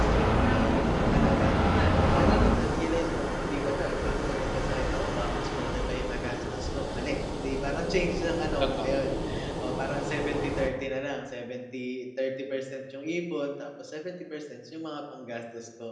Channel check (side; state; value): both; identical; correlation 1.00